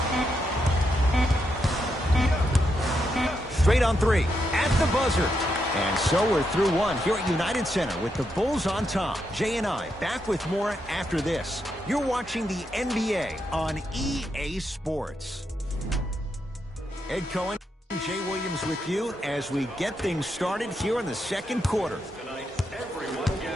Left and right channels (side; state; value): both; normal; correlation 0.82